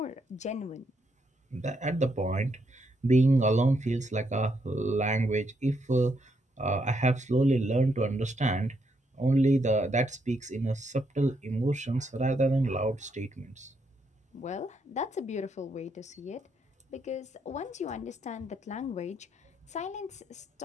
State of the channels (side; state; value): both; normal; correlation 0.77